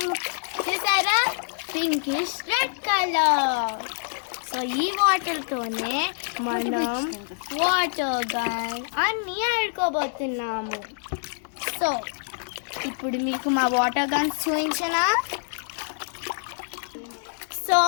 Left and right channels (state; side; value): silent; right; digital silence